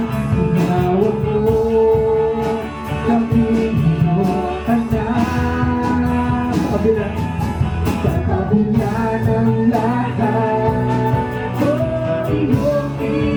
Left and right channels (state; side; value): identical; both; correlation 1.00